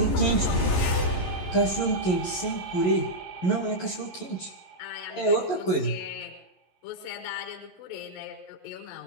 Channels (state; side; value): late; right; 11 ms